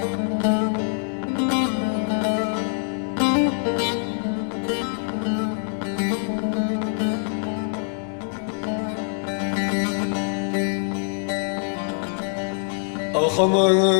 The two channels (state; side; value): silent; right; 60 dB below the other